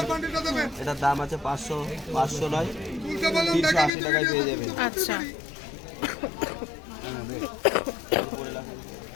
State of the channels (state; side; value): drops out; right; at 3.9 s